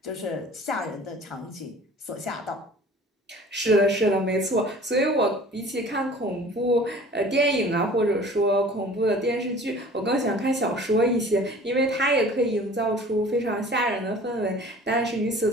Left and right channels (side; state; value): both; normal; correlation 0.46